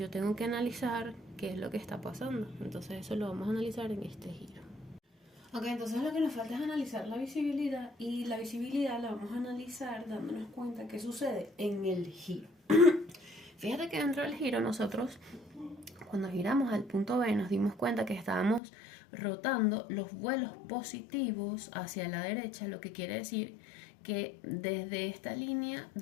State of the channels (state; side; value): drops out; right; at 18.6 s